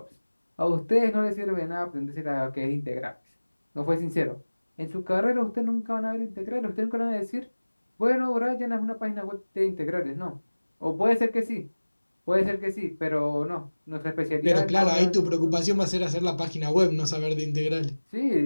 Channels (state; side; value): inverted; both; correlation -1.00